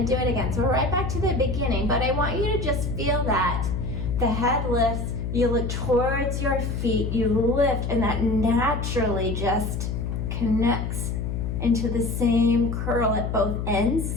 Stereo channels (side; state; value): left; noise; hum, 2 dB below the sound